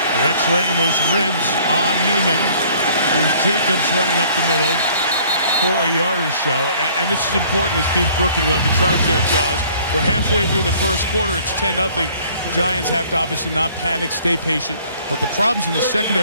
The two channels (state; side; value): inverted; both; correlation -0.56